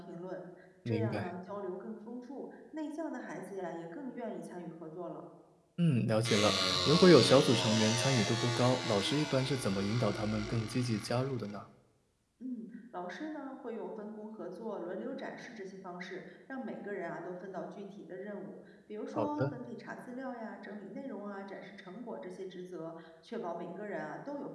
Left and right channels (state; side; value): identical; both; correlation 1.00